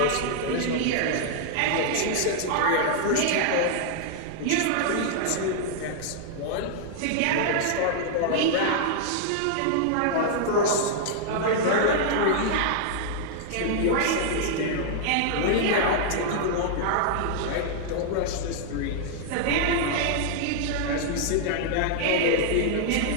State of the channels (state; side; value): different; both; correlation -0.01